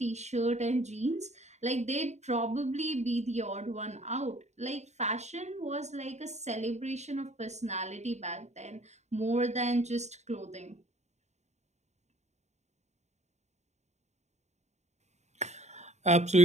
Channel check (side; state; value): left; late; 0.33 ms